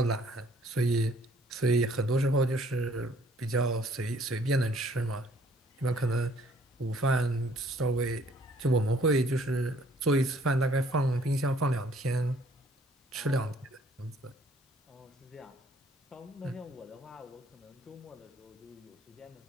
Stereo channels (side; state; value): both; normal; correlation 0.60